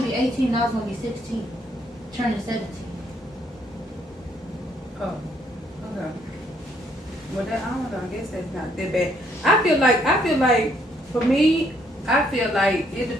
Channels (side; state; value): both; normal; correlation 0.69